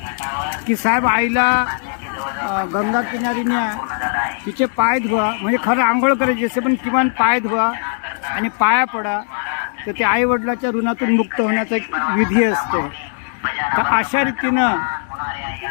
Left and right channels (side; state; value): right; silent; digital silence